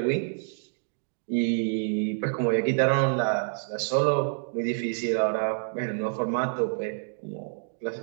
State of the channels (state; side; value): silent; left; digital silence